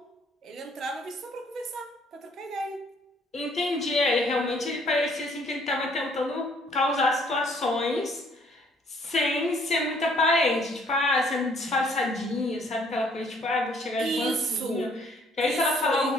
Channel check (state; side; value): normal; both; correlation 0.63